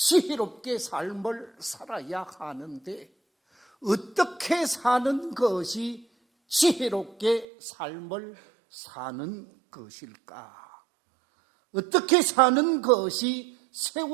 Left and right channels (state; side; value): drops out; left; at 7.5 s